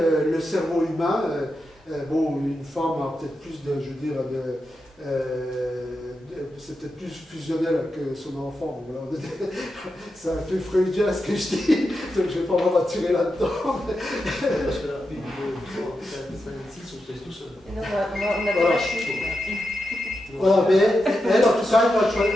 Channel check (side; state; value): both; normal; correlation 0.88